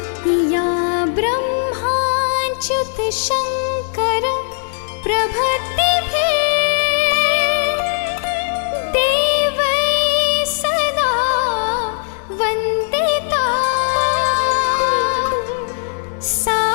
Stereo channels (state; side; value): silent; right; 60 dB below the other